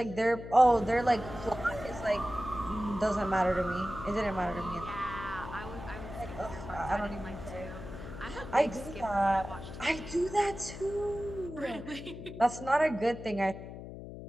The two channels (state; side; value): noise; left; hum, 11 dB below the sound